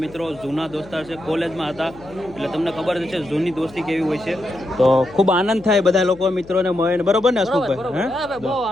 મિત્રો, જૂના દોસ્તાર છે, કોલેજમાં હતા એટલે તમને ખબર જ છે જૂની દોસ્તી કેવી હોય છે. તો ખૂબ આનંદ થાય બધા લોકો મિત્રોને મળીને, બરોબર ને હસમુખભાઈ? બહુ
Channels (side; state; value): left; noise; hum, 21 dB below the sound